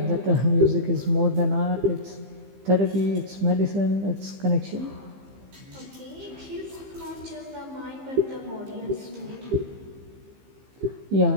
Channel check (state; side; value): late; left; 15 ms